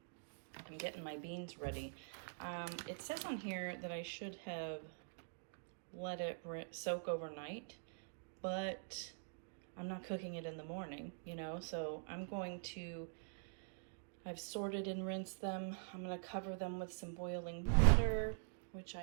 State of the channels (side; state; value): left; silent; digital silence